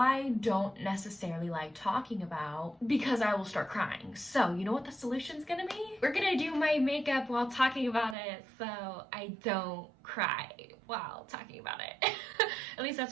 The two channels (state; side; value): drops out; left; at 8.2 s